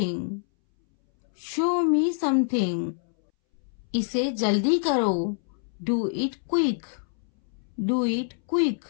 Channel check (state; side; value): silent; right; 60 dB below the other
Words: show me something. इसे जल्दी करो, do it quick, do it quick.